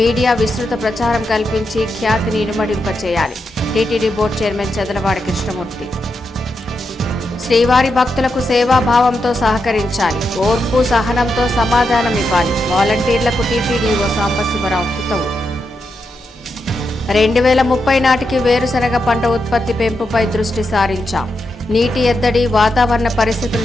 విస్తృత ప్రచారం కల్పించి ఖ్యాతిని ఇనుమడింపచేయాలి. TTD board chairman Chadalavada Krishnamurthy. శ్రీవారి భక్తులకు సేవాభావంతో సహకరించాలి. ఓర్పు సహనంతో సమాధానం ఇవ్వాలి. వాలంటీర్లకు టీటీడీఓ సాంబశివరావు హితవు. 2030 నాటికి వేరుశనగ పంట ఉత్పత్తి పెంపుపై దృష్టి సారించాం. నీటి ఎద్దడి, వాతావరణ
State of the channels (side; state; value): both; normal; correlation 0.85